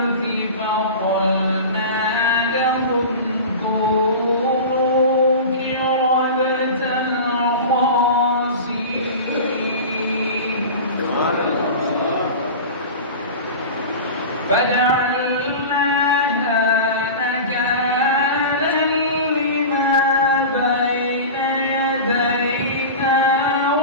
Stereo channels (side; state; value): both; inverted; correlation -0.31